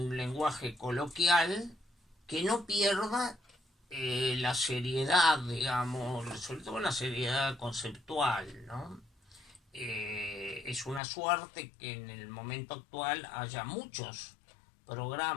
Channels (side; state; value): right; drops out; at 11.0 s